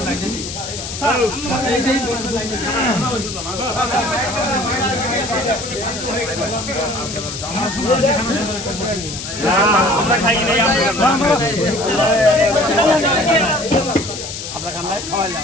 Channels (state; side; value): noise; left; hiss, 8 dB below the sound